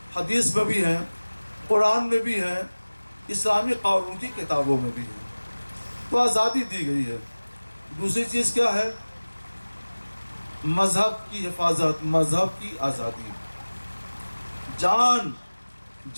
حدیث میں بھی ہیں، قرآن میں بھی ہیں، اسلامی قانون کی کتابوں میں بھی ہیں۔ تو آزادی دی گئی ہے۔ دوسری چیز کیا ہے؟ مذہب کی حفاظت، مذہب کی آزادی،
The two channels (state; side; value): inverted; both; correlation -1.00